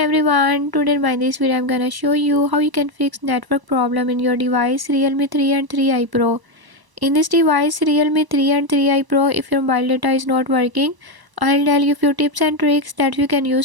today in this video I'm gonna show you how you can fix network problem in your device Realme 3 and 3i Pro. In this device Realme 3 and 3i Pro, if your mobile data is not working, I'll tell you few tips and tricks that you can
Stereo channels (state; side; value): late; left; 1.0 ms